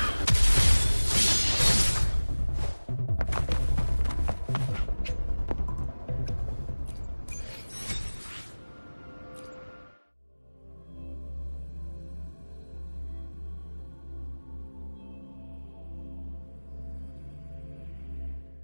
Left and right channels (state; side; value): inverted; both; correlation -1.00